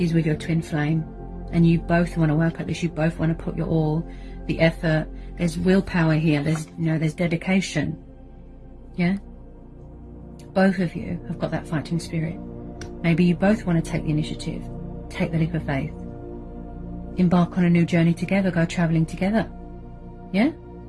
with your twin flame, and you both want to work at this, you both want to put your all, the effort. There's willpower here, there's, you know, there's dedication, yeah? Both of you have got that fighting spirit. Maybe you both want to take the initiative, take the leap of faith, embark on a new journey together, go traveling together. Yeah?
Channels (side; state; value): both; identical; correlation 1.00